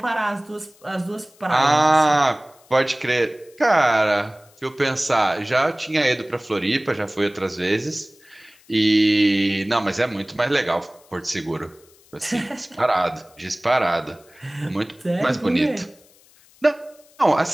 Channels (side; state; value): left; noise; hiss, 29 dB below the sound